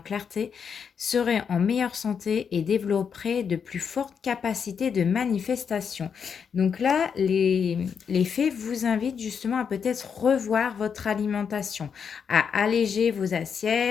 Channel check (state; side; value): quieter; right; 6.8 dB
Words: serez en meilleure santé et développerez de plus fortes capacités de manifestation. Donc là, les fées vous invitent justement à peut-être revoir votre alimentation, à alléger vos